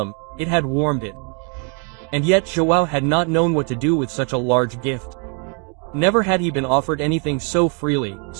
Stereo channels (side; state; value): left; quieter; 38.2 dB